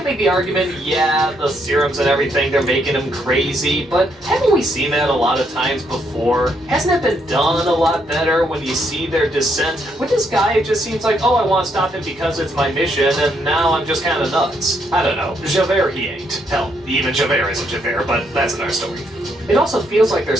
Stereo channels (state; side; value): normal; both; correlation 0.75